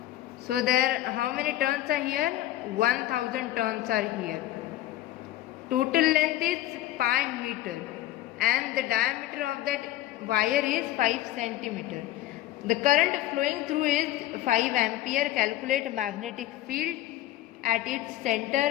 So there, how many turns are here? 1000 turns are here. Total length is pi meter and the diameter of that wire is 5 centimeter. The current flowing through is 5 ampere. Calculate magnetic field at its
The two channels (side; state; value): right; quieter; 14.7 dB